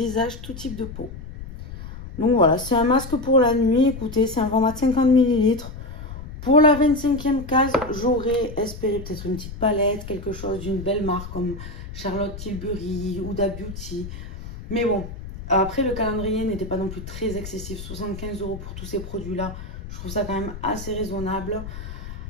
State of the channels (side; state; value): left; noise; rumble, 11 dB below the sound